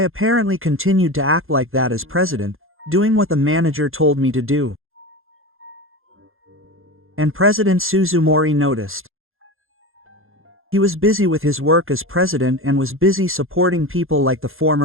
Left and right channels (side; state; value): left; late; 0.60 ms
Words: continued to act like that as president, doing what the manager told me to do. And President Suzumori noticed. He was busy with his work as president and was busy supporting people like the